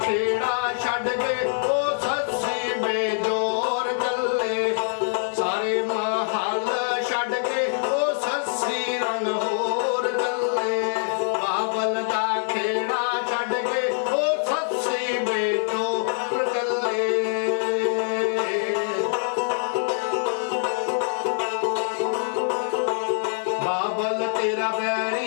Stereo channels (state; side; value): silent; right; digital silence